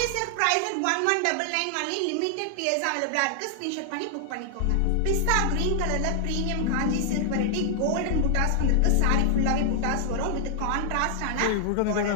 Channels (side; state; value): both; different; correlation -0.01